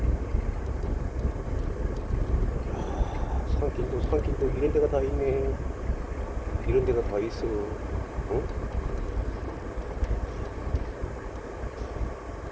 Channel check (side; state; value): both; identical; correlation 1.00